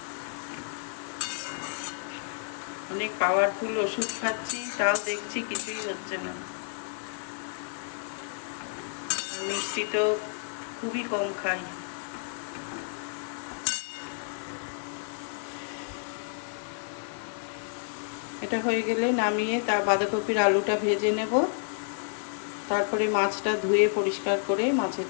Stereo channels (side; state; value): right; silent; digital silence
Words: অনেক পাওয়ারফুল ওষুধ খাচ্ছি, তাও দেখছি কিছুই হচ্ছে না। আর মিষ্টি তো খুবই কম খাই। এটা হয়ে গেলে নামিয়ে তার বাঁধাকপির আলুটা ভেজে নেব। তারপরে মাছটা ধুয়ে পরিষ্কার করে মাছের